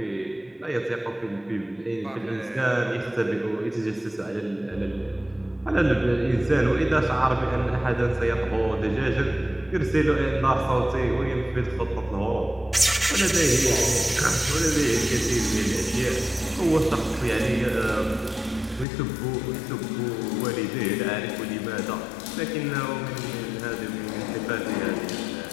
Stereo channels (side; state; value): right; drops out; at 18.9 s